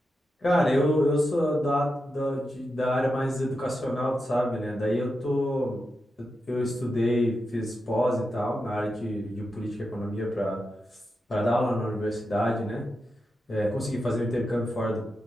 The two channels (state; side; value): normal; both; correlation 0.88